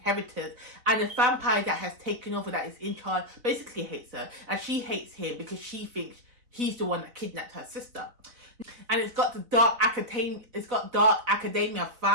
And the vampire that has taken over, that is in charge, basically hates her. And she hates him because she thinks he's the one that kidnapped her sister. And it's got the dark academia,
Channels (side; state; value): left; late; 4.0 ms